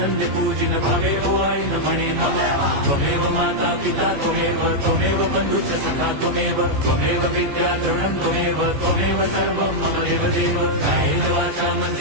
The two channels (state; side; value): late; left; 14 ms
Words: पूजिन भावे ओवाळीन म्हणे मला त्वमेव माता पिता त्वमेव बंधुच सखा त्वमेव विद्या द्रवणं त्वमेव सर्वं मम देवदेव कायेन वाचा